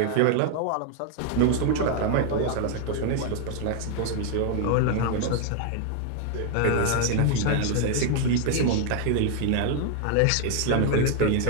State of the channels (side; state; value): both; different; correlation 0.00